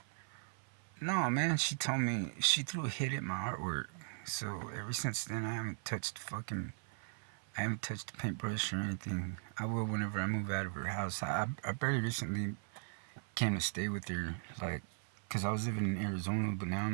No, man, she told me, she threw a hit at my artwork. So ever since then, I haven't touched the paintbrush or anything. I will whenever I move out of her house. I very recently came to stay with her, like, because I was living in Arizona, but now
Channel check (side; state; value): left; silent; 52 dB below the other